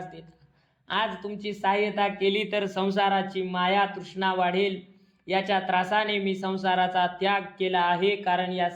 देता? आज तुमची सहाय्यता केली तर संसाराची माया तृष्णा वाढेल. याच्या त्रासाने मी संसाराचा त्याग केला आहे, कारण या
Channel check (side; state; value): both; identical; correlation 1.00